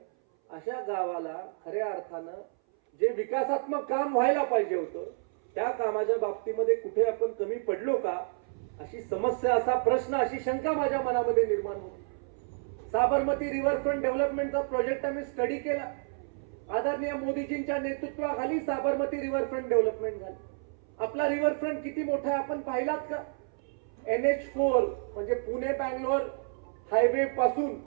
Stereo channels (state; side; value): silent; left; 58 dB below the other